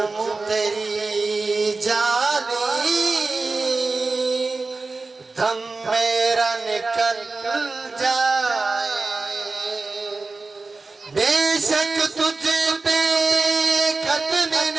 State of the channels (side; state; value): left; quieter; 3.8 dB